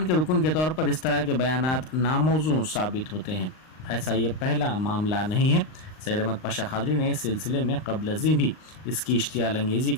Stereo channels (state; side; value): late; right; 39 ms